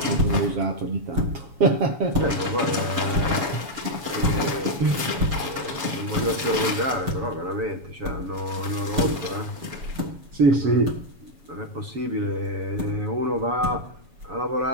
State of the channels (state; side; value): late; left; 7.1 ms